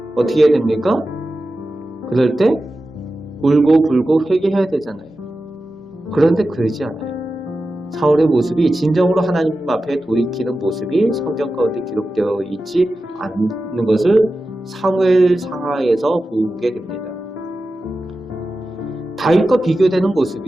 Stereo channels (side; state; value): both; normal; correlation 0.93